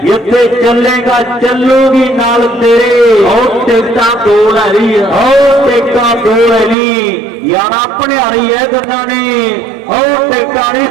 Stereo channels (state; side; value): drops out; left; at 6.8 s